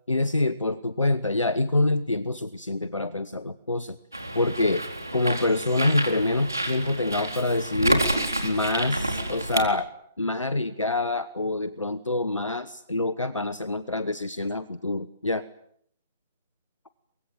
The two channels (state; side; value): inverted; both; correlation -0.70